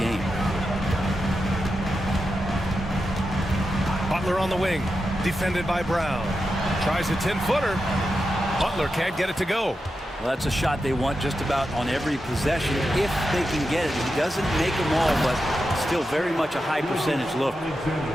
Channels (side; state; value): both; normal; correlation 0.89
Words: Butler on the wing, defended by Brown. Tries a 10-footer. Butler can't get it to go. Well, that's a shot they want just about on every possession if they can get it. He doesn't make them all, but still very much a high percentage look.